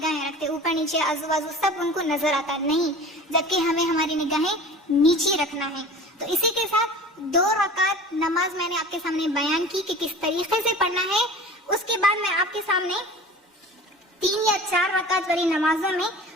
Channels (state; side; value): normal; both; correlation 0.40